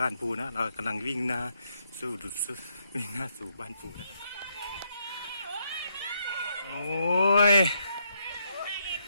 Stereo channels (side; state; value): both; inverted; correlation -0.77